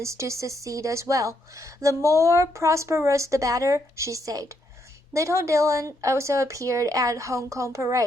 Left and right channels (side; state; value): both; normal; correlation 0.76